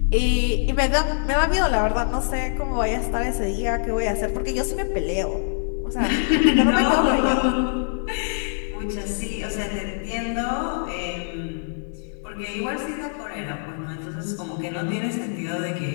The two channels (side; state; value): right; silent; 60 dB below the other